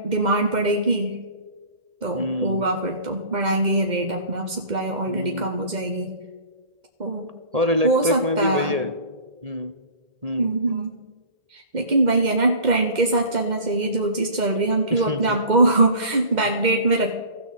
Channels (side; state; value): left; late; 2.1 ms